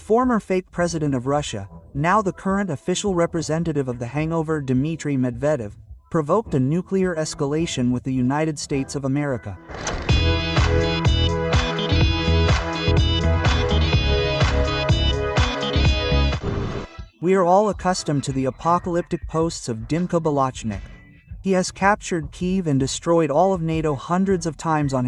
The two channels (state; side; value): identical; both; correlation 1.00